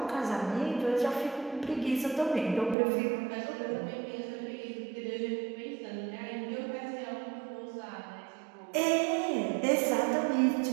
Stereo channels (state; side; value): drops out; left; at 2.8 s